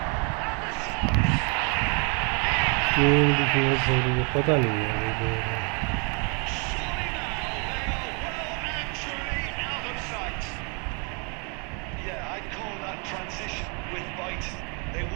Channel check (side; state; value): left; quieter; 35.1 dB